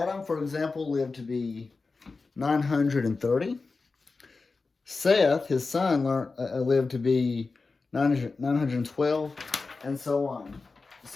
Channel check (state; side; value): quieter; right; 4.1 dB